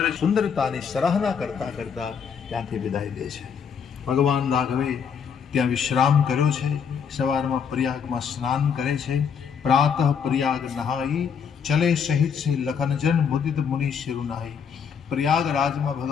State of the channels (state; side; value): quieter; right; 6.9 dB